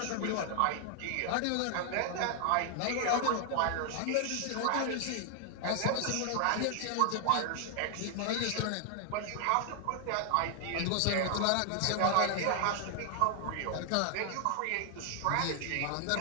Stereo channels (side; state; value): both; different; correlation 0.00